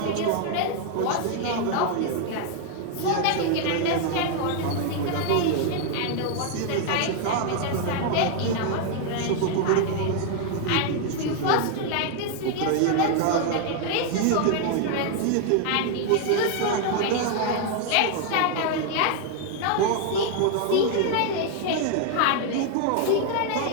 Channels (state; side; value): different; both; correlation 0.00